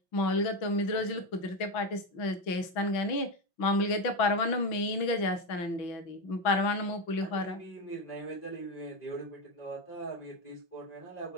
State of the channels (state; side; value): late; right; 6.1 ms